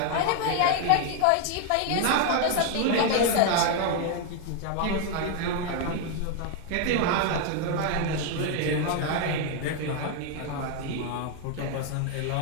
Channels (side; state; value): both; different; correlation 0.01